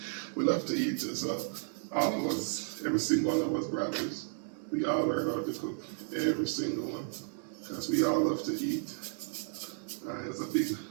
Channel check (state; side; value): silent; left; 56 dB below the other